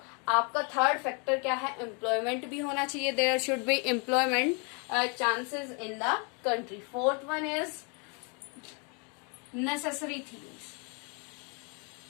आपका third factor क्या है, employment भी होना चाहिए, there should be employment chances in the country. Fourth one is necessary things.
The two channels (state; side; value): quieter; right; 35.0 dB